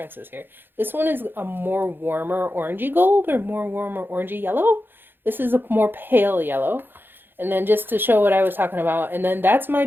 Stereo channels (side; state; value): left; late; 0.099 ms